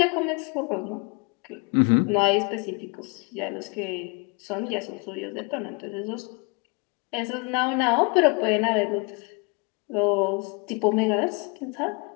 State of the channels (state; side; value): quieter; right; 30.1 dB